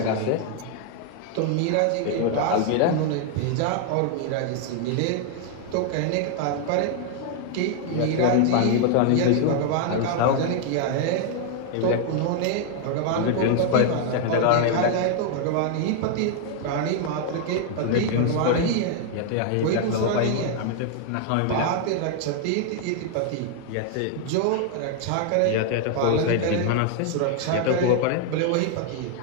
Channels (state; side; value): different; both; correlation 0.00